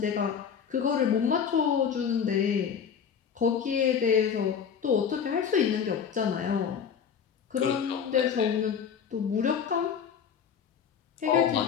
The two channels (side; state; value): right; quieter; 7.3 dB